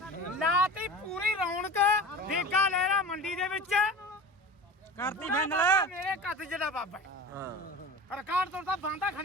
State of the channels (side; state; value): both; normal; correlation 0.34